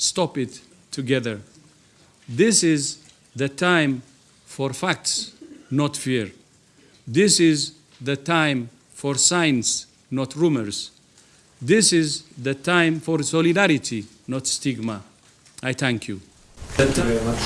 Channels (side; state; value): both; identical; correlation 1.00